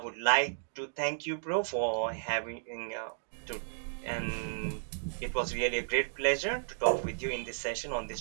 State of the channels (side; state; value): left; silent; digital silence